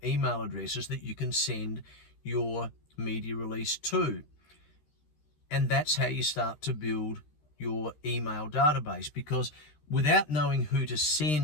email addresses that you can send your media release to. And that's how you start to build your email database, because without knowing who to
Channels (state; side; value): late; right; 13 ms